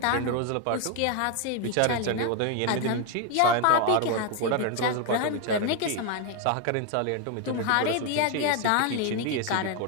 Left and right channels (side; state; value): both; different; correlation 0.01